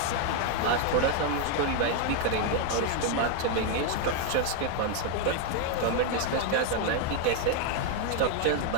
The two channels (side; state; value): both; different; correlation 0.01